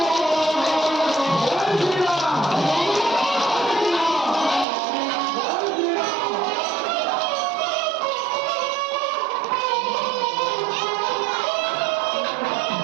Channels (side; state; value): left; drops out; at 4.7 s